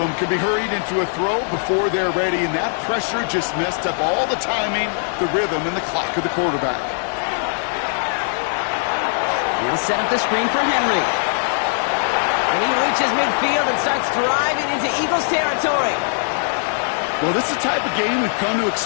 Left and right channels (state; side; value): silent; right; 62 dB below the other